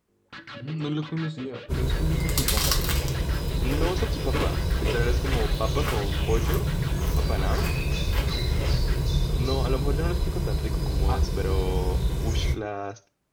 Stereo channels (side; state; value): both; identical; correlation 1.00